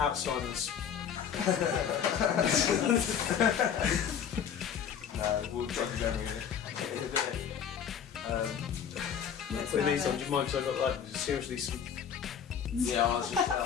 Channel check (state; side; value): quieter; right; 8.0 dB